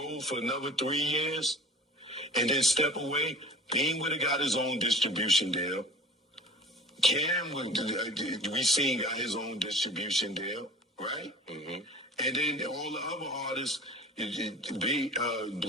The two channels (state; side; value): normal; both; correlation 0.42